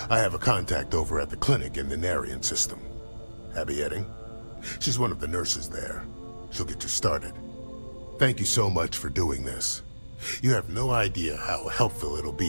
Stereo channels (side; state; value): both; inverted; correlation -1.00